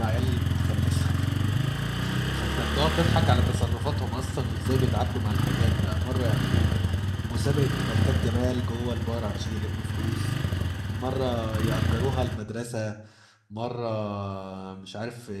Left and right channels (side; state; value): both; identical; correlation 1.00